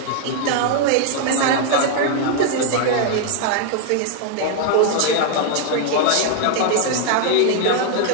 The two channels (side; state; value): both; different; correlation 0.00